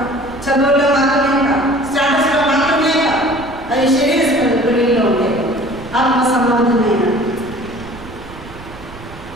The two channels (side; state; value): right; noise; rumble, 17 dB below the sound